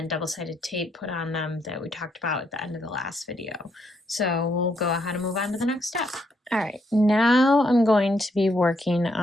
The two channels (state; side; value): normal; both; correlation 0.75